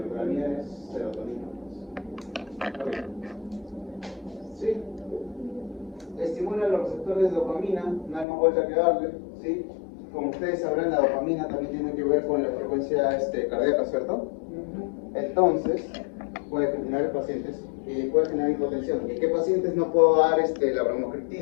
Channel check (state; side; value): drops out; right; at 8.2 s